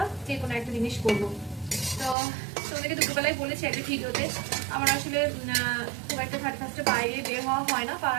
যে কোনো একটা জিনিস করবো। তো তোমাদেরকে দুপুরবেলায় বলেছি একটা ভিডিওতে, আমার আসলে খুব একটা 31 বাইরে বের হওয়া হয় না।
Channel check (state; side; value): drops out; left; at 2.1 s